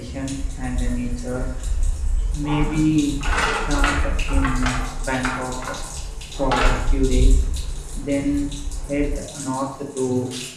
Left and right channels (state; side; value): identical; both; correlation 1.00